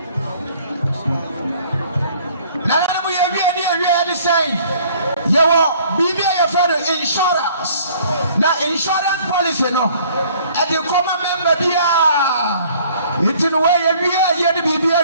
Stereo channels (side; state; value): both; inverted; correlation -0.56